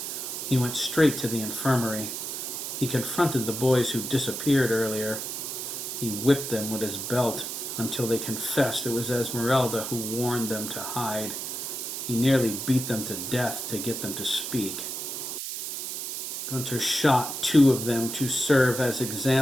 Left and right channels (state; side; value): noise; right; hiss, 5 dB below the sound